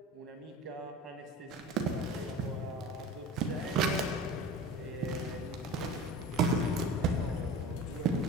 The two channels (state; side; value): normal; both; correlation 0.36